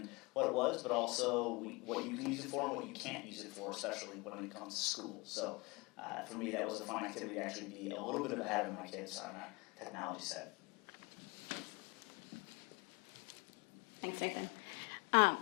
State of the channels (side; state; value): right; quieter; 26.0 dB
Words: what it was, but also what you can use it for and what you can't use it for, especially when it comes to school. So for me, that was a fun activity to actually be a little bit ahead of my kids on that technology side. Thanks, Nathan.